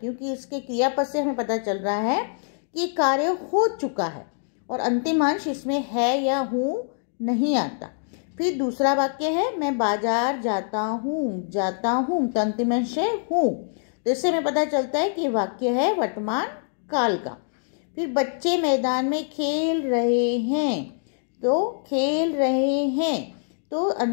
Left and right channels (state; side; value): silent; right; digital silence